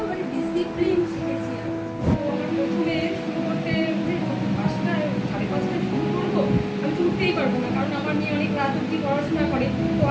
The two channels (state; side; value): identical; both; correlation 1.00